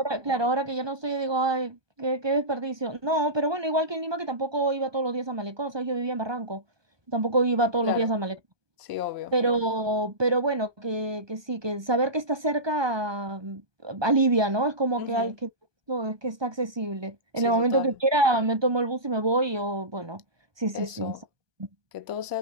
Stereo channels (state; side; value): late; left; 1.2 ms